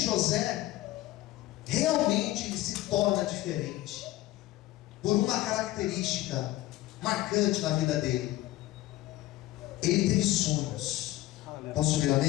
realmente repente ele se torna diferente por uma característica marcante na vida dele. Ele teve sonhos. Posso ouvir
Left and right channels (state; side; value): quieter; right; 16.3 dB